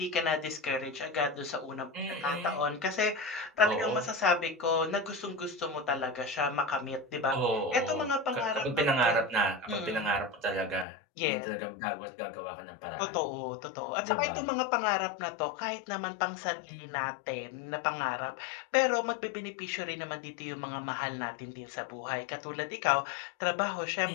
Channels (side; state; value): right; drops out; at 10.9 s